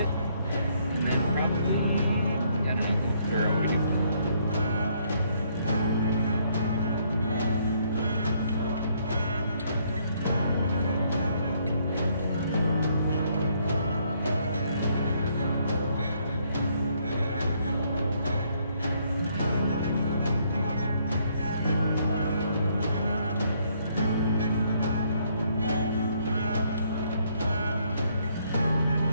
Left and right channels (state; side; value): inverted; both; correlation -0.69